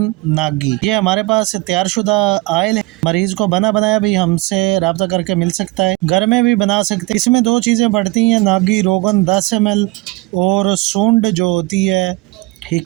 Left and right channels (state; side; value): quieter; left; 21.7 dB